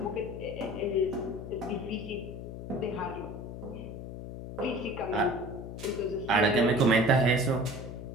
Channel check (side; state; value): left; noise; hum, 9 dB below the sound